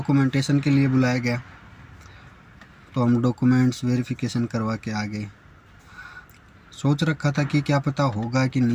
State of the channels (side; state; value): both; identical; correlation 1.00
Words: के लिए बुलाया गया, तो हम डॉक्यूमेंट्स वेरिफिकेशन करवा के आ गए। सोच रखा था कि क्या पता होगा कि